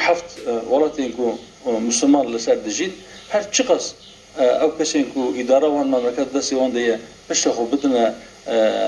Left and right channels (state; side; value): identical; both; correlation 1.00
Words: ولایتی که مسلمان لسر دجید هر چقدر او کسی که اداره وان مملکت دستی وان دیه پشت خود بدن